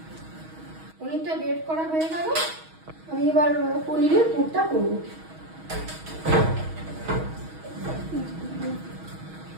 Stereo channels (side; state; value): left; late; 6.3 ms